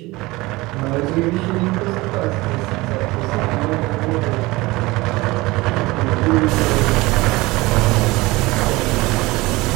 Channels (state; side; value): quieter; left; 21.2 dB